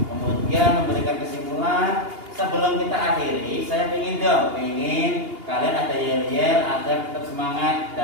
memberikan kesimpulan. Sebelum kita akhiri, saya ingin kalian ada yel-yel agar tetap semangat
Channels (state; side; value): late; left; 2.8 ms